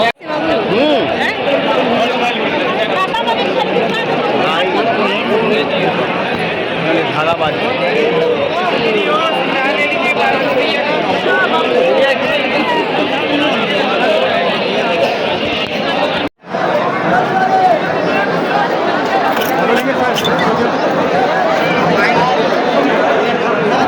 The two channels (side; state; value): both; identical; correlation 1.00